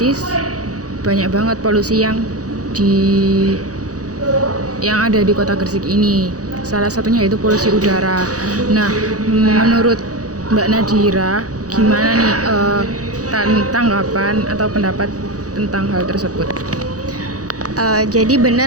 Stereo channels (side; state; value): left; late; 0.67 ms